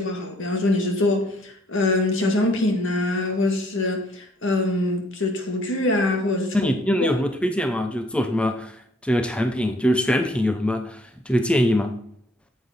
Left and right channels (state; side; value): normal; both; correlation 0.63